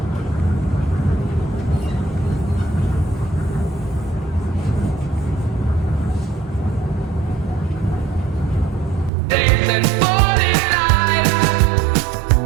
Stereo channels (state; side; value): drops out; left; at 9.1 s